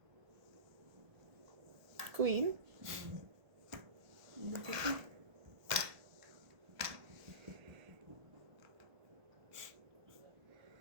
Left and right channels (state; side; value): late; left; 1.3 ms